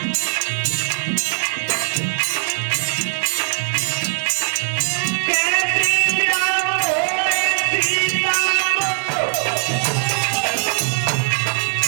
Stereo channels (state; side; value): silent; left; 66 dB below the other